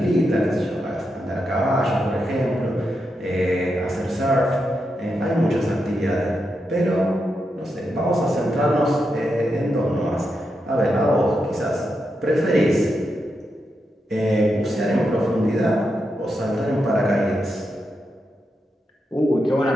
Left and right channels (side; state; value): both; normal; correlation 0.85